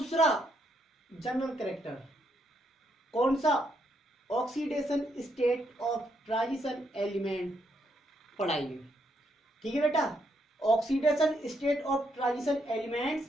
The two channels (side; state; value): both; normal; correlation 0.76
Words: जनरल कैरेक्टर कौन सा, oxidation state of transition element पढ़ाएंगे। ठीक है बेटा, oxidation state of transition elements